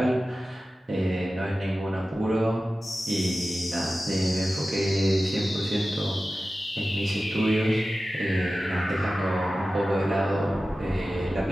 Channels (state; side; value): normal; both; correlation 0.95